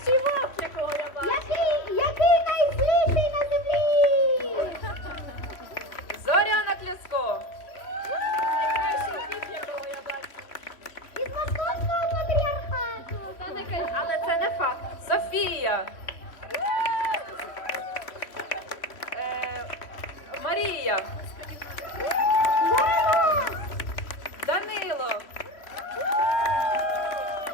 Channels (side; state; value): right; late; 3.1 ms